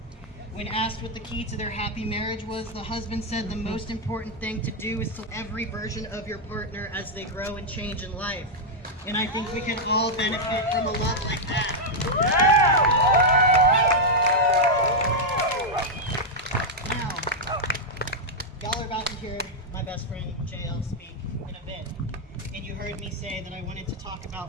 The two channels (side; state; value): both; normal; correlation -0.02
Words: When asked what the key to their happy marriage was, the husband said the most important thing to do is to every version of your partner as they grow and change in life. And I think we can all benefit from a love like that. Now, y'all are about to hear my best friend JL speak in a bit. And you heard me say that I wanted to talk